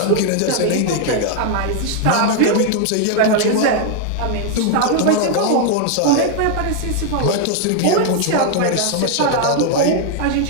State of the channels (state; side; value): different; both; correlation 0.00